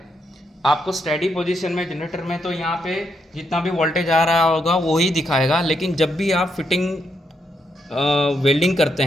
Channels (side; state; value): both; normal; correlation 0.79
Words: आपको स्टेडी पोजीशन में जनरेटर में, तो यहाँ पे जितना भी वोल्टेज आ रहा होगा वो ही दिखाएगा। लेकिन जब भी आप फिटिंग वेल्डिंग करते